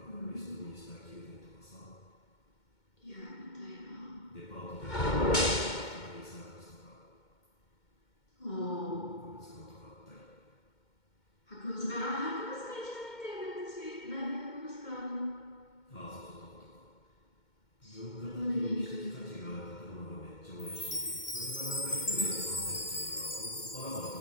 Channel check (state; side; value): late; right; 2.2 ms